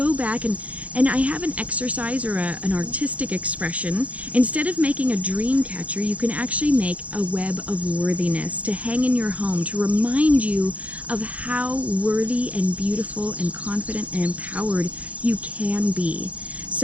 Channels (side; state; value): left; late; 0.067 ms